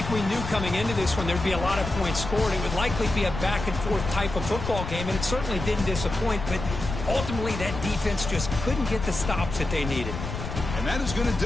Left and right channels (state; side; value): noise; left; rumble, 6 dB below the sound